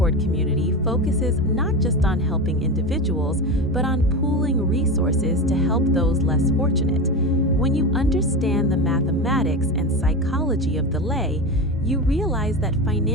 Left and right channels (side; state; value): both; normal; correlation 0.22